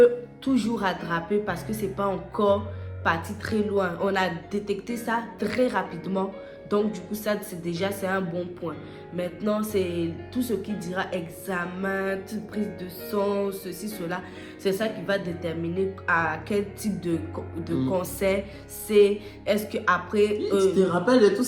toujours rattraper parce que c'est pas encore parti très loin. On a détecté ça très rapidement. Donc du coup ça c'est un bon point. Maintenant c'est tout ce qui dira examen, prise de sang, ceci, cela. C'est ça qui va déterminer à quel type de cancer c'est. Est-ce qu'après... tu te rappelles de tout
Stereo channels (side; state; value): both; identical; correlation 1.00